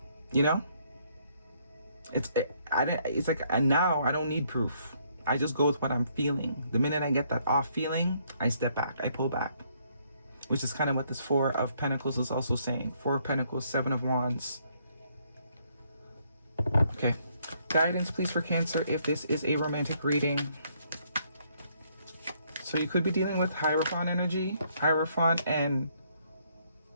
You know? It's like, and now I don't need proof. I just go with what I'm feeling. The minute I get that off feeling, I step back, I pull back. Which is kind of what this Four of Pentacles is also saying. Four of Pentacles, Seven of Wands. Okay. Guidance, please, for Cancer, if this is a romantic reading. So you could be dealing with Hierophant energy. Hierophant and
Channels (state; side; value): inverted; both; correlation -0.69